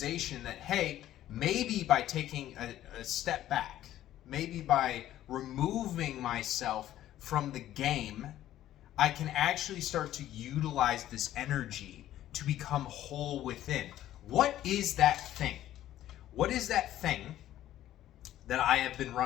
that, hey, maybe by taking a step back, maybe by removing myself from the game, I can actually start to utilize this energy to become whole within. What is that thing? What is that thing that I have been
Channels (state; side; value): quieter; right; 13.0 dB